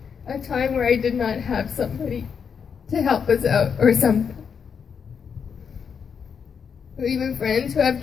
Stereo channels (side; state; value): right; quieter; 6.6 dB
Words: a time where I did not have somebody to help us out or something. Or even friends who have